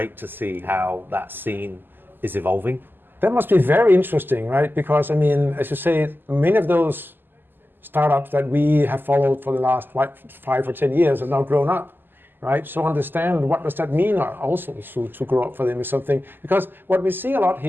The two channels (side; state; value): left; late; 0.093 ms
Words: to see how that scene is evolving. That must be very interesting, right? Because, I mean, as you say, many of those startups that we have followed for the last 5 or 10 years have now grown up, right? So understand what does that mean also to grow up for them is something, because what we see a lot